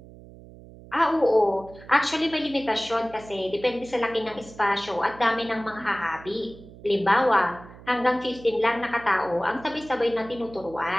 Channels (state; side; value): noise; right; hum, 19 dB below the sound